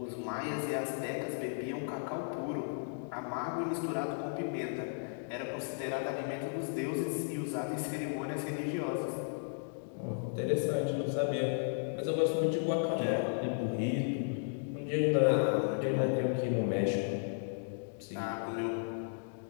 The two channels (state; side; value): silent; right; digital silence